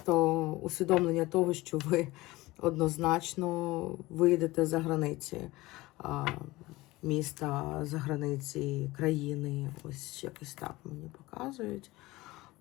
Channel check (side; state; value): right; quieter; 19.8 dB